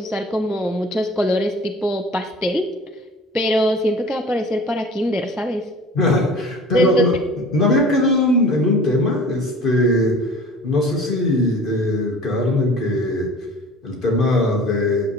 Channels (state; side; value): normal; both; correlation 0.44